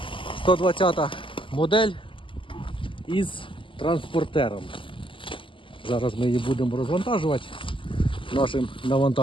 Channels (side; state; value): right; late; 0.25 ms